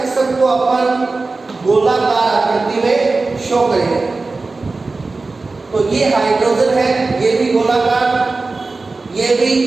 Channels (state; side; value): quieter; left; 3.7 dB